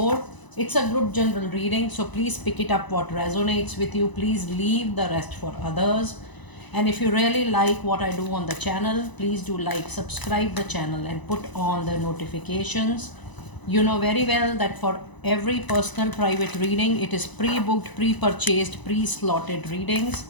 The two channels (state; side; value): late; right; 1.0 ms